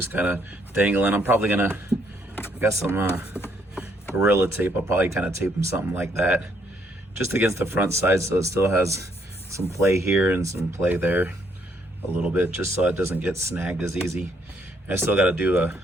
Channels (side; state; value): both; normal; correlation 0.70